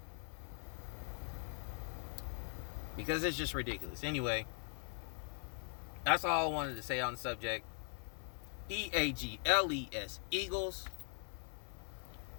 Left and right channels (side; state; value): right; silent; 50 dB below the other